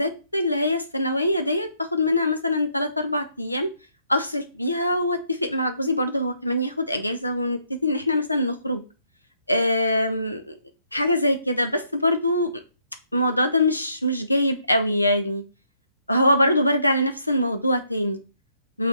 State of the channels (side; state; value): both; inverted; correlation -0.73